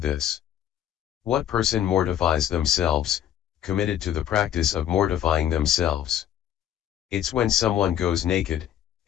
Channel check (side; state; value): right; quieter; 10.6 dB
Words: this. What person mortifies themselves, committed to the practice of mortifying themselves? It's when someone goes naked,